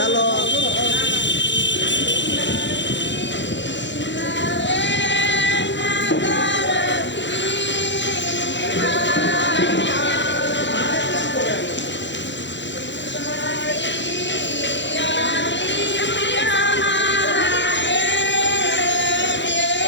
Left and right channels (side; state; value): right; late; 0.53 ms